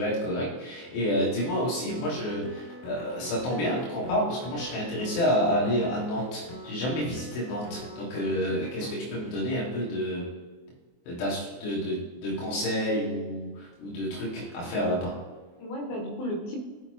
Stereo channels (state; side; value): late; right; 24 ms